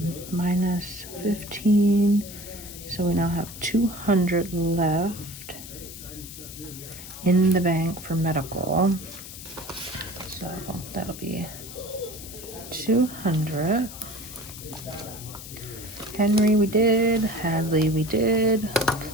Minus 15. So we now have 200 left in the bank for medical. So that'll be 200. Henry we did, Hadley we did,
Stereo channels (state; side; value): noise; left; hiss, 13 dB below the sound